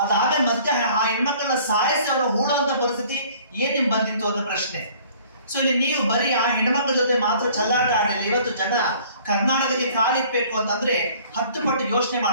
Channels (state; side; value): inverted; both; correlation -0.54